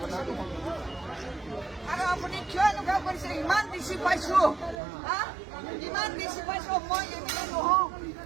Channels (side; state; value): left; drops out; at 4.8 s